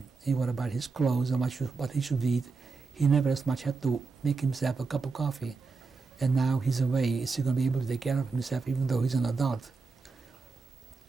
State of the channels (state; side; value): quieter; left; 4.4 dB